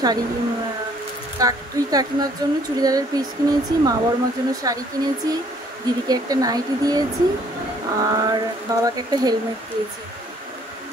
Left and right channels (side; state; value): both; normal; correlation 0.61